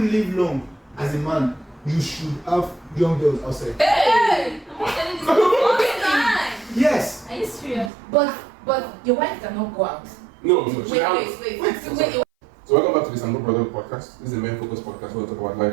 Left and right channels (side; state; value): left; drops out; at 7.9 s